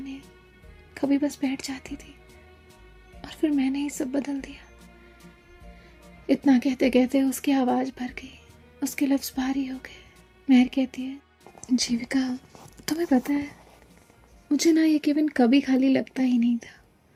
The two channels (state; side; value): identical; both; correlation 1.00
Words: कभी बस बैठ जाती थी और फिर मैंने ही सब बदल दिया। इतना कहते कहते उसकी आवाज़ भर गई, उसके लफ्ज़ भारी हो गए। मेहर कहती है जीविका तुम्हें पता है मुझे ना ये केबिन कभी खाली लगता ही नहीं था।